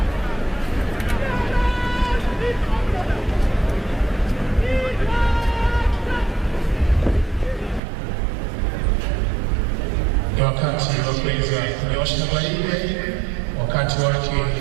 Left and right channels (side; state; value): left; drops out; at 7.8 s